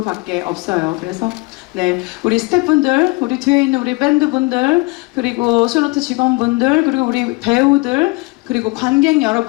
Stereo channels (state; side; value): quieter; right; 25.1 dB